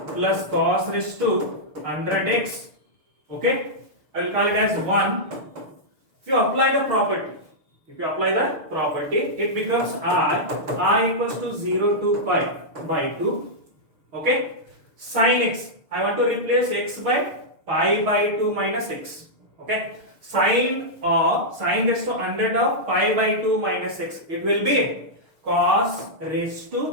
plus cos raised to 100x. Okay. I will call it as 1. If you apply the property, it becomes I equals to 0 to pi by 2. Okay. Sin x, I want to replace x by pi by 2 minus x. Okay. Sine raised to 100 of pi by 2 minus x. It will be cos raised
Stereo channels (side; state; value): left; late; 6.6 ms